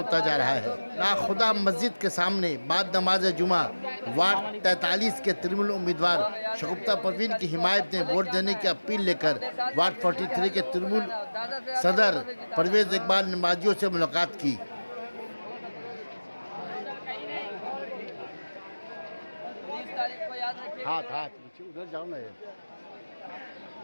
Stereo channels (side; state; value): both; inverted; correlation -1.00